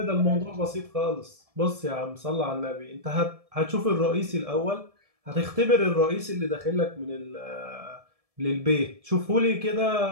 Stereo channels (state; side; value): late; left; 1.7 ms